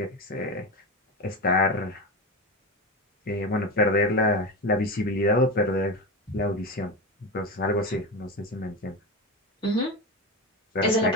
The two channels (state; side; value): normal; both; correlation 0.21